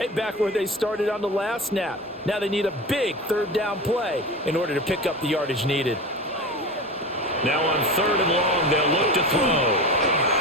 back where they started on the last snap. Now they need a big 3rd down play in order to pick up the yardage needed. Now on 3rd and long, they'll look to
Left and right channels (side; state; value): both; normal; correlation 0.29